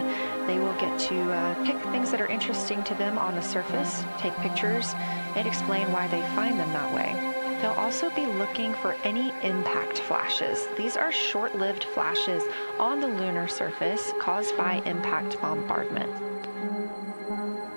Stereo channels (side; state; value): both; inverted; correlation -1.00